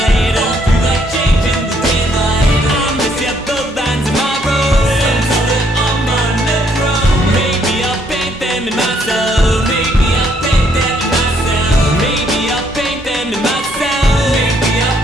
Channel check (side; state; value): both; normal; correlation 0.69